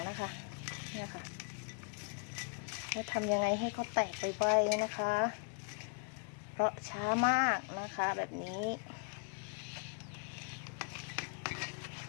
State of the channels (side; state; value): right; quieter; 36.8 dB